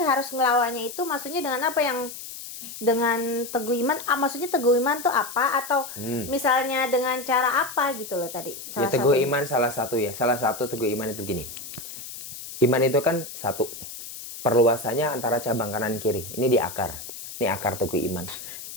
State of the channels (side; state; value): left; noise; hiss, 11 dB below the sound